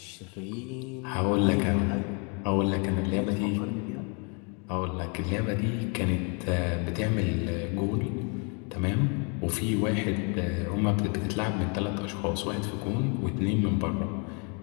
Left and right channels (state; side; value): quieter; right; 35.2 dB